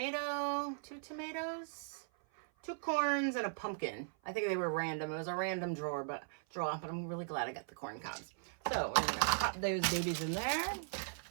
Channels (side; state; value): left; silent; 52 dB below the other